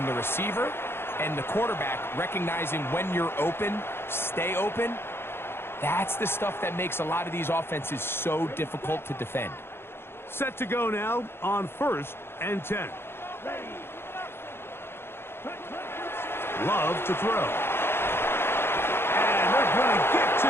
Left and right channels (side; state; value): right; late; 0.11 ms